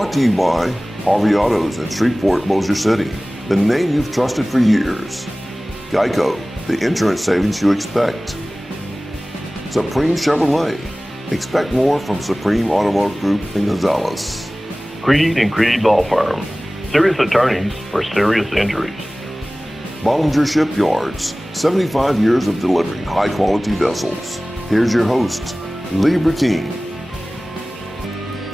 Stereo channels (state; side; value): normal; both; correlation 0.98